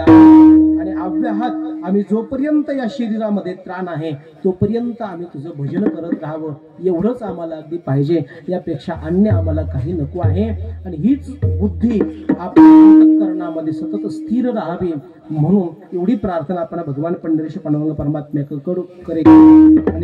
अव्याहत आम्ही जोपर्यंत या शरीरामध्ये त्राण आहे तोपर्यंत आम्ही तुझं भजन करत राहावं, एवढंच आम्हाला अगदी पाहिजे. यापेक्षा अन्य आम्हाला काही नको आहे. आणि हीच बुद्धी आपल्या अंतःकरणामध्ये सतत स्थिर राहावी म्हणून एवढी प्रार्थना आपण भगवान पंढरीश पांडुरंग परमात्म्याकडे करेल.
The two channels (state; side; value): identical; both; correlation 1.00